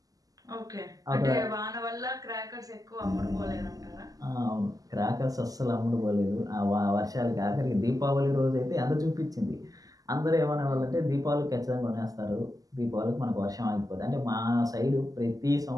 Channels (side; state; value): left; late; 0.17 ms